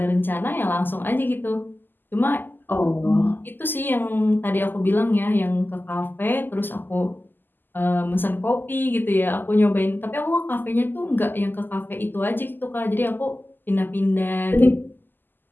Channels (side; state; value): right; late; 0.091 ms